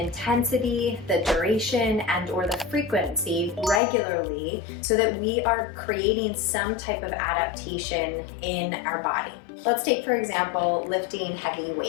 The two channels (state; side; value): drops out; right; at 3.8 s